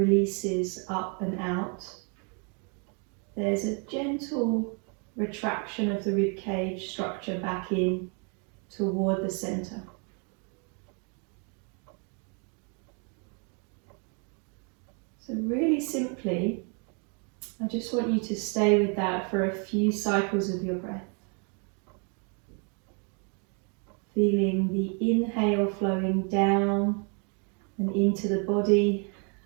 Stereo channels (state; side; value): quieter; left; 37.4 dB